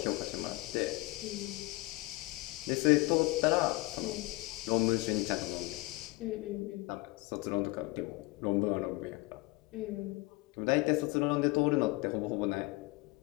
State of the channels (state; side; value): quieter; right; 22.3 dB